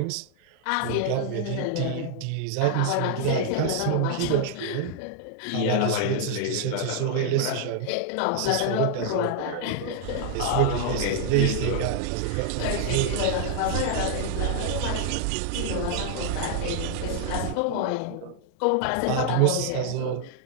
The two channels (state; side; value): different; both; correlation 0.00